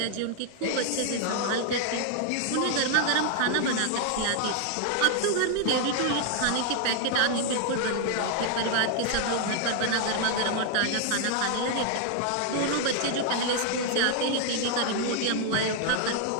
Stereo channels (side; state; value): both; different; correlation 0.00